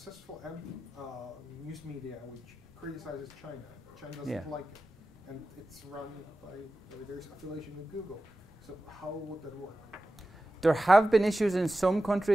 news media which criticizes China? China doesn't like it, and it's run by there's affiliation with Google. So how would that work? There have been issues in some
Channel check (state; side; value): normal; both; correlation 0.94